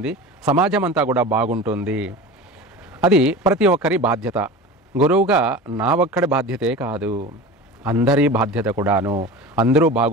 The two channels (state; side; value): normal; both; correlation 0.33